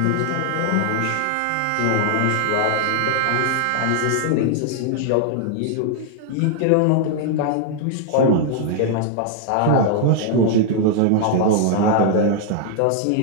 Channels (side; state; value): both; different; correlation 0.00